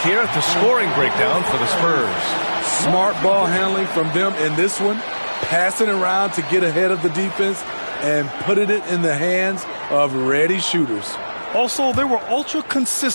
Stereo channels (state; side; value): inverted; both; correlation -1.00